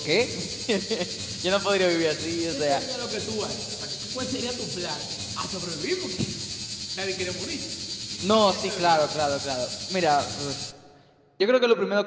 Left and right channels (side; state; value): both; identical; correlation 1.00